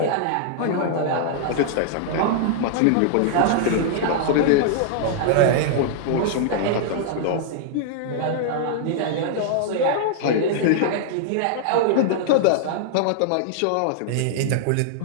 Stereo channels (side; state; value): both; different; correlation -0.01